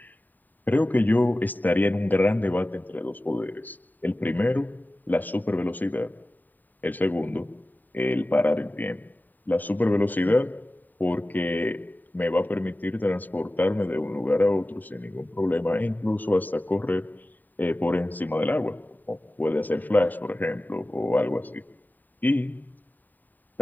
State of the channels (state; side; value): late; right; 0.088 ms